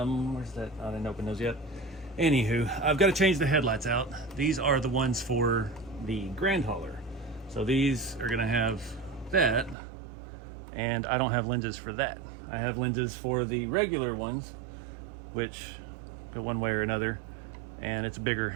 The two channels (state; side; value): drops out; left; at 9.8 s